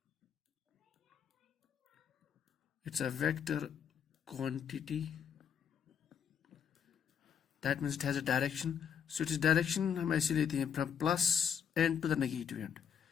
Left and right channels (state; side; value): quieter; right; 7.9 dB